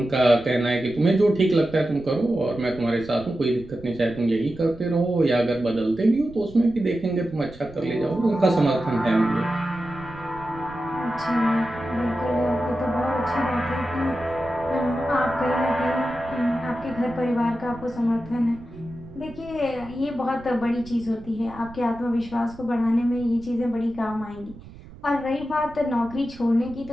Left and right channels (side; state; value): right; noise; rumble, 19 dB below the sound